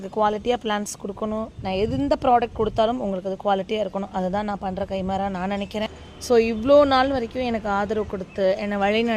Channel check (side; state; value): both; identical; correlation 1.00